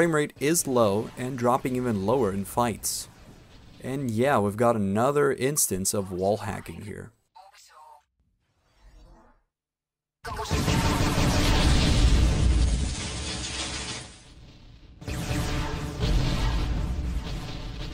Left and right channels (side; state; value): both; identical; correlation 1.00